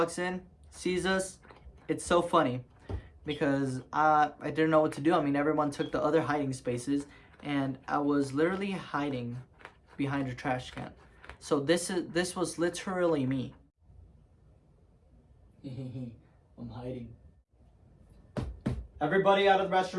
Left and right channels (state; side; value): identical; both; correlation 1.00